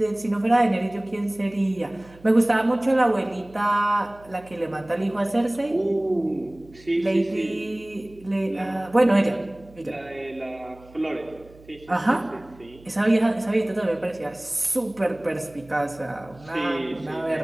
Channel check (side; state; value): right; noise; hum, 24 dB below the sound